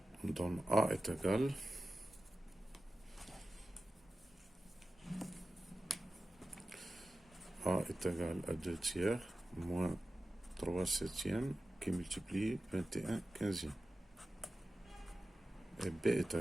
on donne A est égal A est égal à 2 tiers moins 3 septièmes qui multiplie 21 quinzième. Et B est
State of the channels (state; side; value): normal; both; correlation 0.94